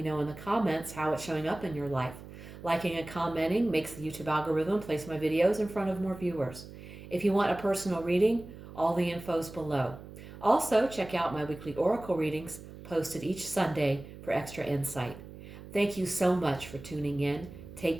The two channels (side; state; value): right; noise; hum, 15 dB below the sound